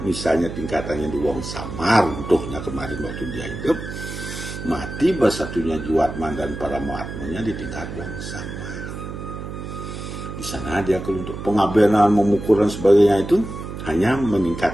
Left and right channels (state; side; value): noise; right; hum, 8 dB below the sound